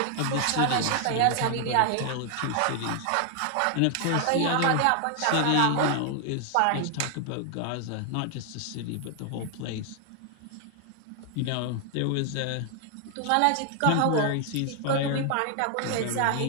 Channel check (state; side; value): different; both; correlation 0.00